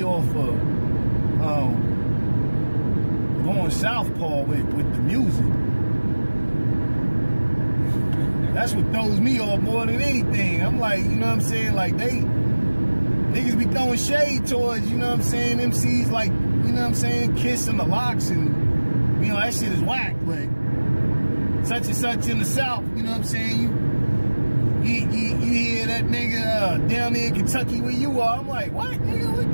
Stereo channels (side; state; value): both; inverted; correlation -1.00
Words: off of going southpaw with the music. That's what throws me off more than anything. I'm like, you know what I'm saying? Like, niggas be throwing shade towards, you know what I'm saying, MCs like, you know what I'm saying, Kiss and the Locks, and, you know, that shit is whack, but such and such in the South, you know what I'm saying? You hear that nigga down there in Kentucky where you are. I'm like, what, nigga?